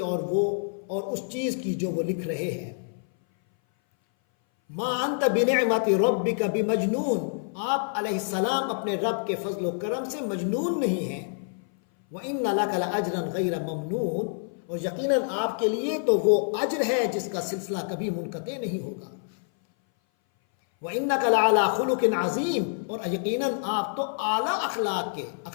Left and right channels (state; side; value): silent; right; 58 dB below the other